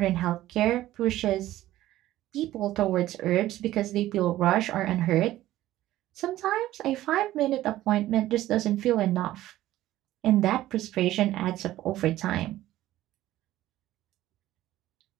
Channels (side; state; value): left; quieter; 14.8 dB